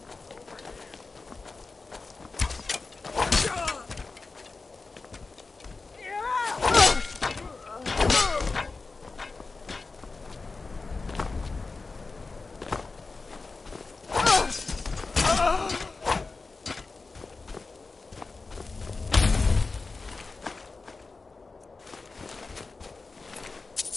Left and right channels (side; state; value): right; quieter; 3.9 dB